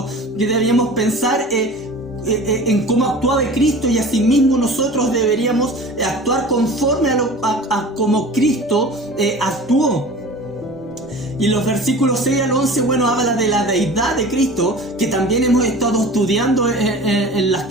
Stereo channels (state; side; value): normal; both; correlation 0.39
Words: que debíamos pensar en cómo actuaba Cristo, y asimismo nosotros deberíamos actuar conforme a como Cristo actuó. Y los versículos 6 al 11, bueno, habla de la deidad de Cristo, que también hemos estado estudiando en las